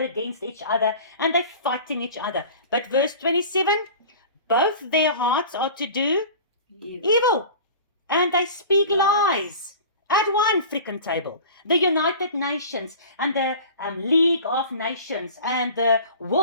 against each other, and they're fighting each other. But verse 27, both their hearts are to do evil, and they speak lies at one freaking table. The United Nations and the League of Nations and the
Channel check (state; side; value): inverted; both; correlation -0.40